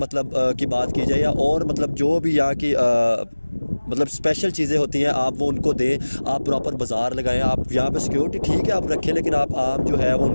की बात की जाए, या और मतलब जो भी यहाँ की मतलब स्पेशल चीज़ें होती हैं, आप वो उनको दें। आप प्रॉपर बाज़ार लगाएं। आप यहाँ पे सिक्योरिटी ठीक है आप रखें, लेकिन आप आम जो है वो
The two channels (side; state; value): both; inverted; correlation -1.00